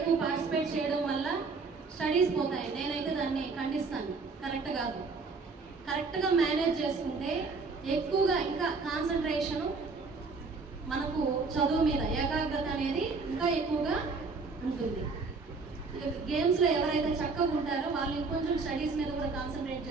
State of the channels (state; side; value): quieter; left; 4.3 dB